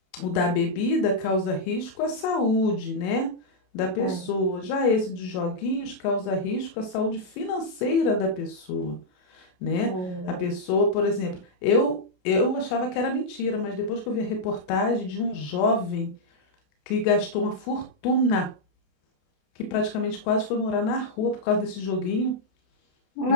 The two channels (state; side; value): late; right; 28 ms